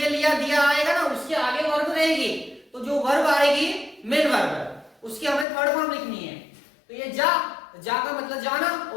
लिया, दिया आएगा ना, उसके आगे वर्ब रहेगी। तो जो वर्ब आएगी मेन वर्ब, उसकी हमें थर्ड फॉर्म लिखनी है। तो ये जा का मतलब जाना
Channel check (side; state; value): right; drops out; at 5.5 s